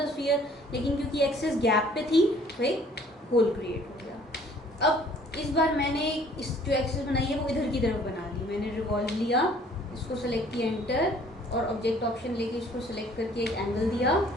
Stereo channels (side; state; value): both; normal; correlation 0.56